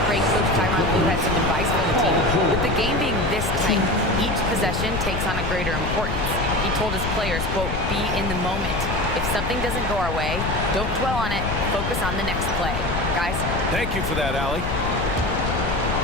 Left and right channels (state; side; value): noise; left; rumble, 4 dB below the sound